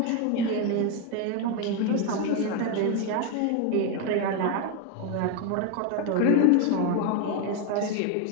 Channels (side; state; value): both; different; correlation 0.02